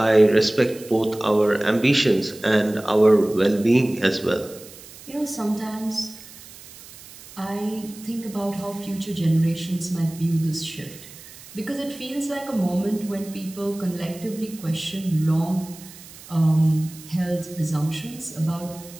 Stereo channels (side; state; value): right; noise; hiss, 18 dB below the sound